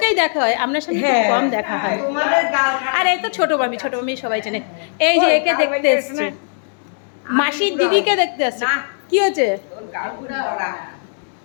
দেখা হয়, আপনার সাথে খুব কম দেখা হয়। আর এই তো ছোট মামি, ছোট মামি সবাই চেনে। এই যে একে দেখতে এসছে, মাসির দিদিকে দেখতে আসছে। কি হচ্ছে?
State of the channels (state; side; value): silent; right; digital silence